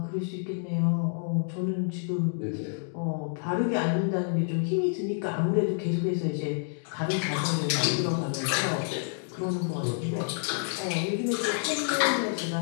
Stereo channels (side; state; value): right; silent; digital silence